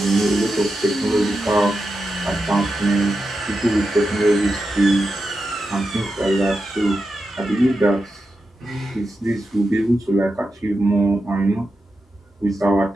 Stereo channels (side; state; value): both; normal; correlation 0.89